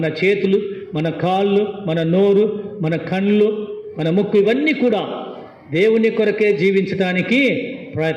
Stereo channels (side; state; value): both; identical; correlation 1.00